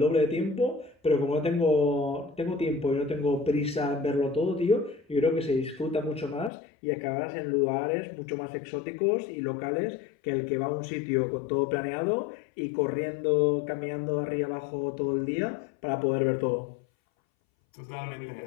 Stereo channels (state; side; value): drops out; right; at 6.5 s